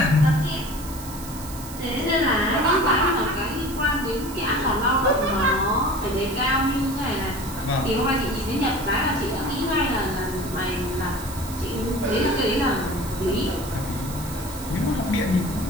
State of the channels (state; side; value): noise; right; hiss, 14 dB below the sound